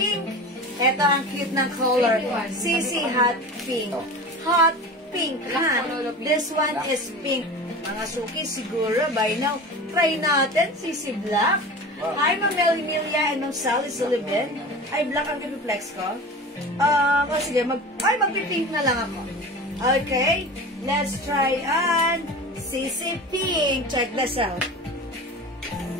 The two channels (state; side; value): normal; both; correlation 0.34